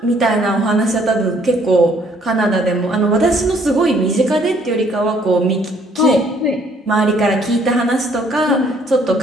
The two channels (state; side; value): normal; both; correlation 0.63